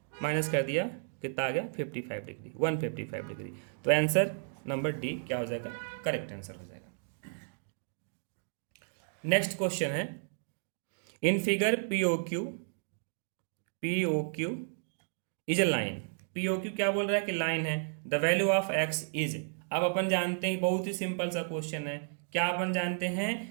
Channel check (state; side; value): silent; left; digital silence